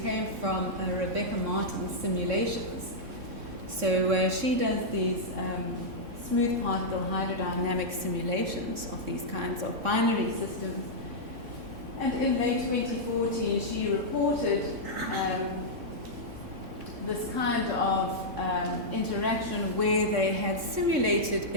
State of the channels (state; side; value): late; left; 3.6 ms